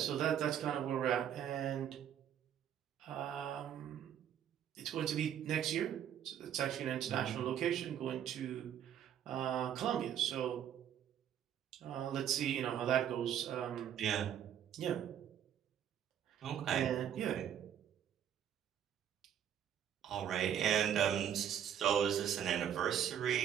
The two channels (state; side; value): quieter; left; 9.7 dB